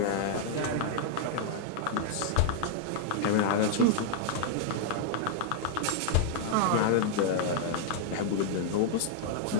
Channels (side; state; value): both; different; correlation -0.01